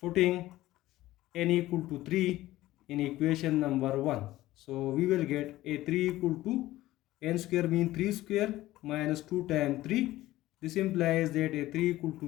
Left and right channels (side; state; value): right; quieter; 16.2 dB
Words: n equal to 3 in equation number 1. So we will get a3 equal to n square mean 3 square minus 2 times 3. This implies that a3 equal